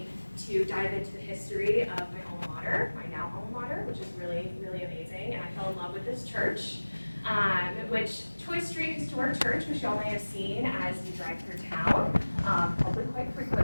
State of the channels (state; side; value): inverted; both; correlation -1.00